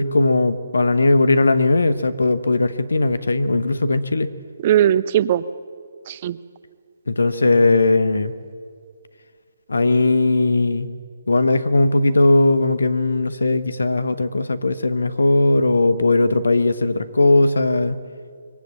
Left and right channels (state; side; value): inverted; both; correlation -0.89